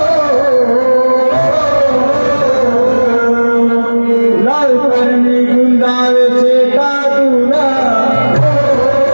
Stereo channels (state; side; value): inverted; both; correlation -1.00